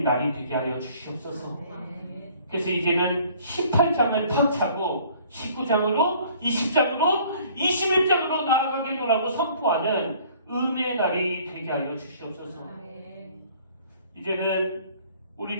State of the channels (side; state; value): both; inverted; correlation -0.55